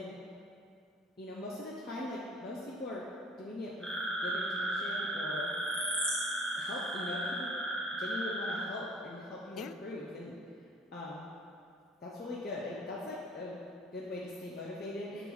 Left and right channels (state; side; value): normal; both; correlation 0.50